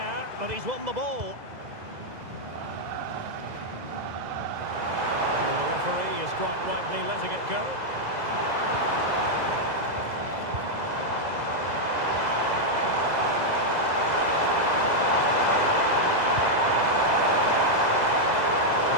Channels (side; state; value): left; late; 2.0 ms